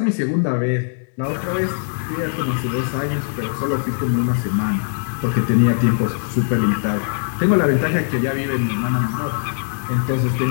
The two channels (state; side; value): silent; right; 65 dB below the other